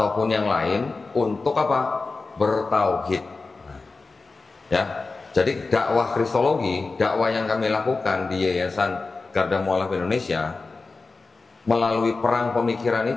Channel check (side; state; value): right; quieter; 3.9 dB